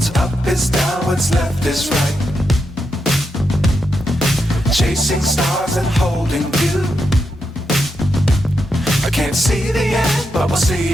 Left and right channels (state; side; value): normal; both; correlation 0.84